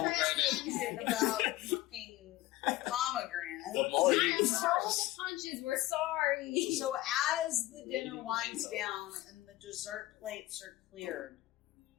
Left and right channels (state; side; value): quieter; right; 17.2 dB